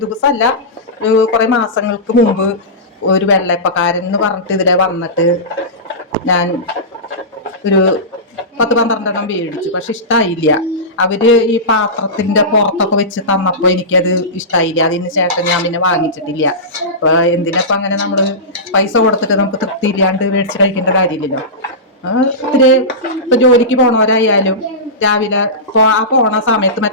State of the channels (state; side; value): normal; both; correlation -0.18